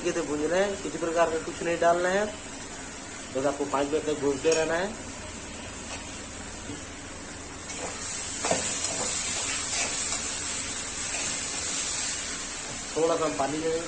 से भूनना है। किसी प्रकार का कुछ नहीं डालना है, बस आपको 5 मिनट तक भूनते रहना है। थोड़ा सा हम पानी ले लेंगे,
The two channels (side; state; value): both; identical; correlation 1.00